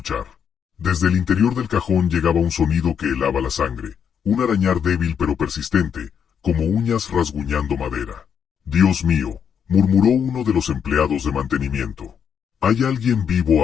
Desde el interior del cajón llegaba un sonido que helaba la sangre, un arañar débil pero persistente, como uñas rasguñando madera. «Dios mío», murmuró uno de los empleados de mantenimiento. «Hay alguien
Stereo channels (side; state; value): right; quieter; 7.7 dB